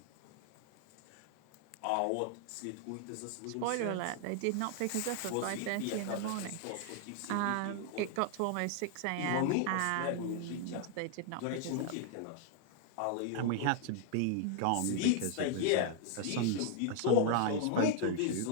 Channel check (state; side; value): different; both; correlation 0.00